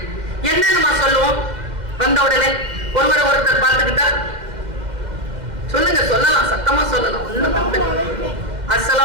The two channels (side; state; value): left; late; 2.1 ms